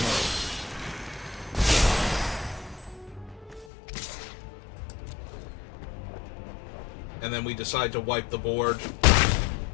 and then we decide to wipe the board,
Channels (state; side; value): drops out; right; at 3.7 s